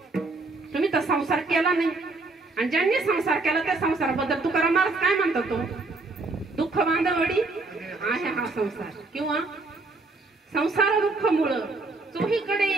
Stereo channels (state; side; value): quieter; left; 3.4 dB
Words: तुम्ही तर संसार केला नाही. आणि ज्यांनी संसार केला त्या संसाराबद्दल तुकाराम महाराज काय म्हणतो? तो दुःख बांधवडी आहे हा संसार. किंवा संसार दुःख मुळ चोहीकडे